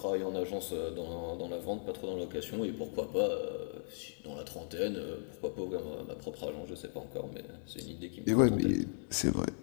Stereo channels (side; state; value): right; silent; digital silence